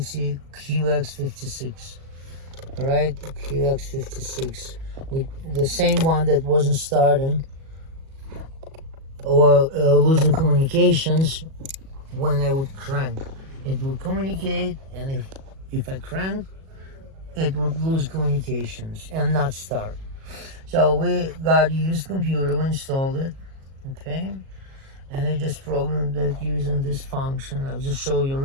QX56. Alright, QX56 with the same one that wasn't starting or losing communications when I would crank. It would communicate, and if I crank, it would lose communications and not start. So we got a used computer, we installed it, okay? And I just programmed it using this function. I'll just show you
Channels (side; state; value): left; late; 37 ms